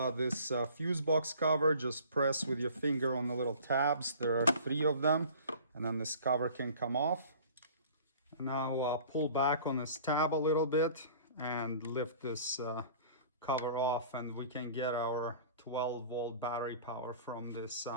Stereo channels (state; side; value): inverted; both; correlation -0.46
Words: this fuse box cover. Just press with your finger on the little tabs. There are 3 of them, and then this cover can come off. And now pull back on this tab a little bit and lift this cover off, and we can get our 12-volt battery power from this